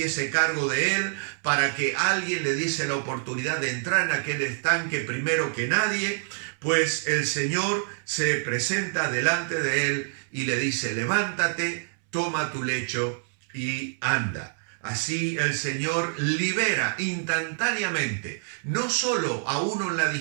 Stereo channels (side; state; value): left; silent; 61 dB below the other